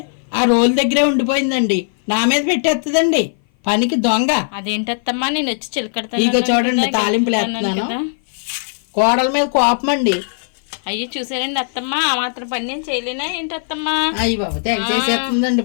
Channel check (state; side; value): silent; right; 57 dB below the other